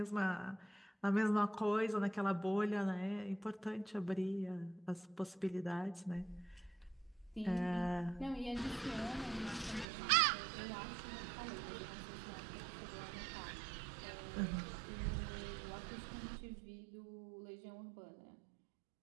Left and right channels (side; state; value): left; drops out; at 9.9 s